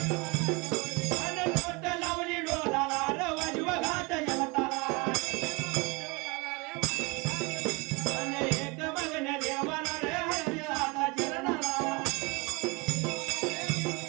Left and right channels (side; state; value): left; quieter; 27.4 dB